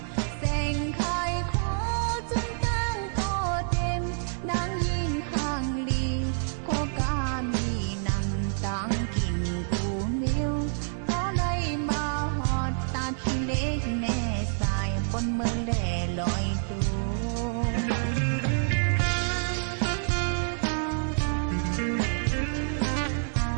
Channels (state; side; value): silent; left; 60 dB below the other